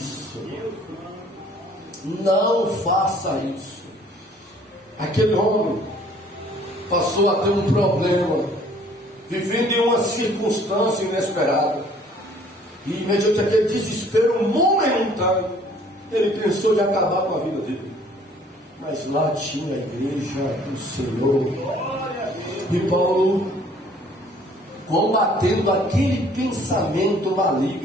não faça isso. Aquele homem passou a ter um problema, vivendo em uma circunstância inesperada, e mediante aquele desespero momentâneo, ele pensou de acabar com a vida dele. Mas lá tinha a igreja do Senhor, e Paulo, combatendo aquele pensamento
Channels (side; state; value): both; normal; correlation 0.57